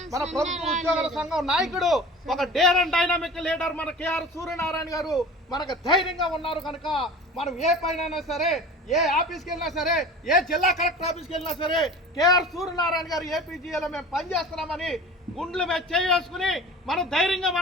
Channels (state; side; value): normal; both; correlation 0.39